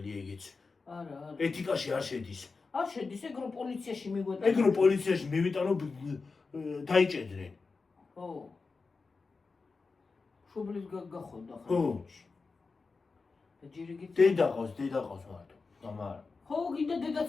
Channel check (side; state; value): right; quieter; 4.3 dB